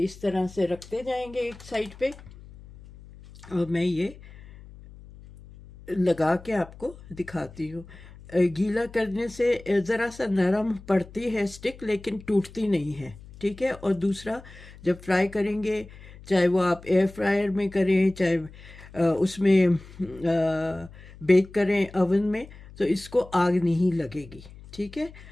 तरह से रखते जाएंगे एक साइड पे, और मैं ये लगा के आपको दिखाती हूँ। गीला करने से ज़रा सा नरम पड़ती है स्टिक, लेकिन टूटती नहीं है। ठीक है, और दूसरा, जब फ्राई करेंगे, चाहे वो आप एयर फ्रायर में करें, चाहे उसमें बेक करें ओवन में, तो इसको आग नहीं लगेगी। ठीक है,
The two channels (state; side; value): noise; left; hum, 19 dB below the sound